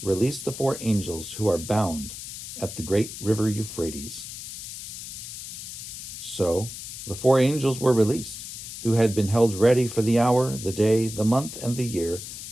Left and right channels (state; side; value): noise; left; hiss, 10 dB below the sound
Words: "Release the 4 angels who are bound at the great river Euphrates." So the 4 angels were released, who had been held ready for the hour, the day, the month, and the year,